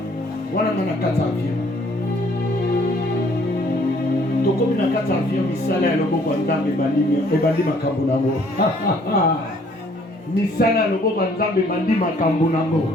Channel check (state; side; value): normal; both; correlation 0.61